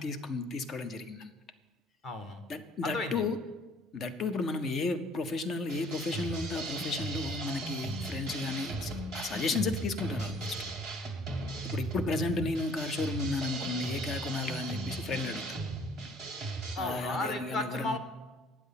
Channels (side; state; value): both; normal; correlation 0.57